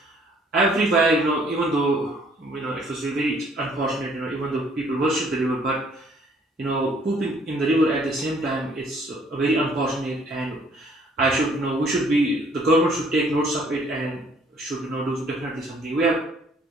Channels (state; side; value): normal; both; correlation 0.61